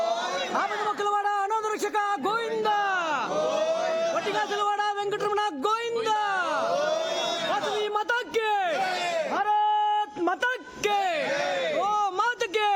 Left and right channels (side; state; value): both; identical; correlation 1.00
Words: ఆపదముక్కలవాడ అనాథ రక్షక గోవింద వట్టిగాసలవాడ వెంకటరమణ గోవింద వాసవి మాతాకి భారత్ మాతాకి ఓ మాతకి